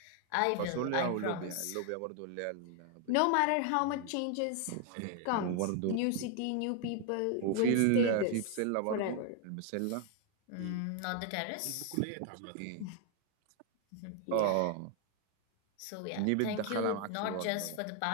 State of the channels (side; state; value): both; different; correlation 0.00